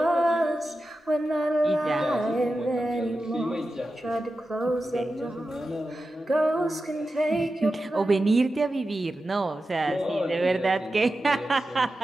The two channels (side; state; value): both; normal; correlation 0.92